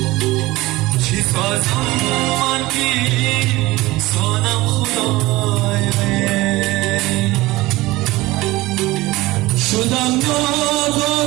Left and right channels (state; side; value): quieter; left; 19.5 dB